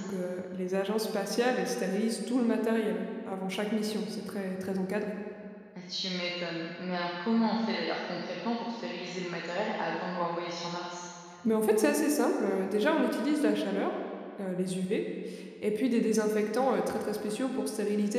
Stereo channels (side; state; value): both; identical; correlation 1.00